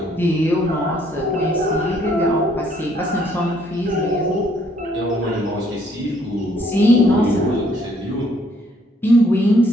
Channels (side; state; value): both; normal; correlation 0.66